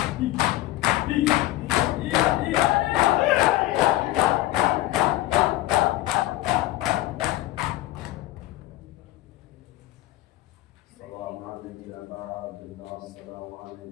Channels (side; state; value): right; quieter; 16.6 dB